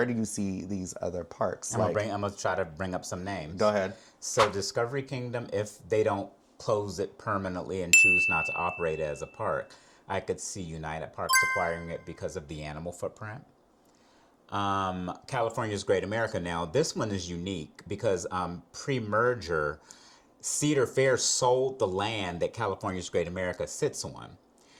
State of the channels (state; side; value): identical; both; correlation 1.00